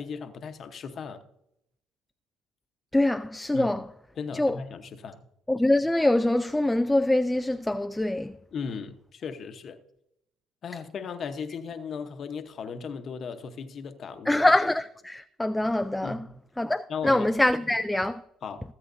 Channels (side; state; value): both; normal; correlation 0.98